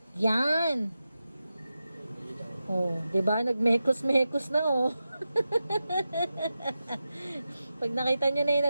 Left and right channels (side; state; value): both; inverted; correlation -0.91